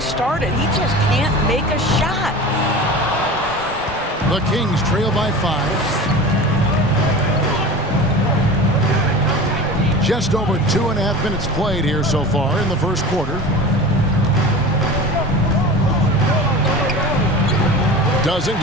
started. He just can't make a shot. The Kings trail by 5. Just over 2.5 minutes played here so far in the first quarter. Doesn't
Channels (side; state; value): both; normal; correlation 0.34